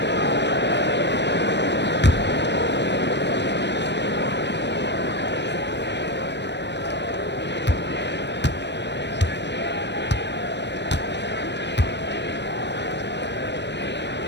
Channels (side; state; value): right; late; 0.51 ms